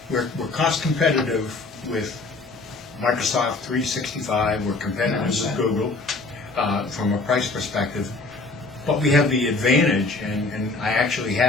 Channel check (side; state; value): right; quieter; 3.4 dB